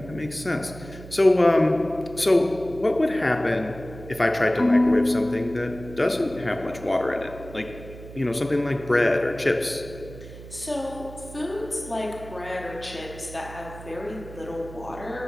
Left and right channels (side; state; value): right; noise; hum, 15 dB below the sound